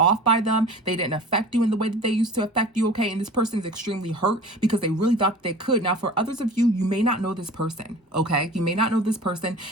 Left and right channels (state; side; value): normal; both; correlation 0.40